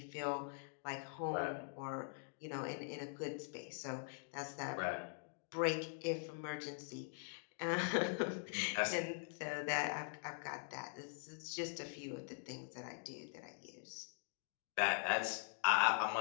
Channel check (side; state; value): right; silent; digital silence